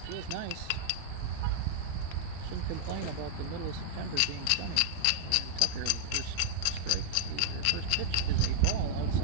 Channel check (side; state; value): both; different; correlation -0.01